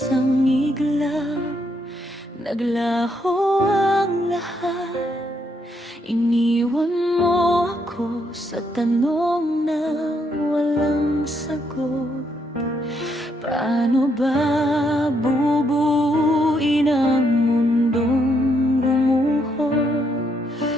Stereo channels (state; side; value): normal; both; correlation 0.75